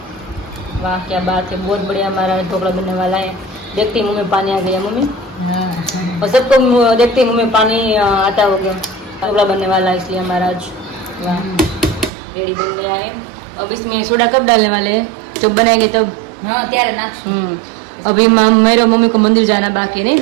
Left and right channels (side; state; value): left; drops out; at 12.1 s